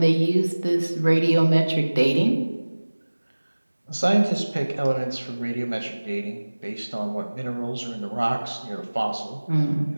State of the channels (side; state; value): both; inverted; correlation -1.00